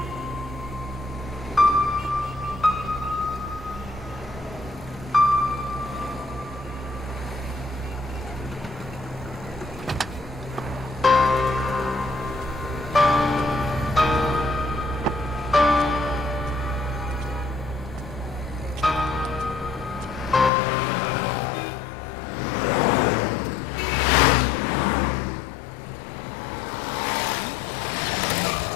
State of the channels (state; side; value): drops out; right; at 20.5 s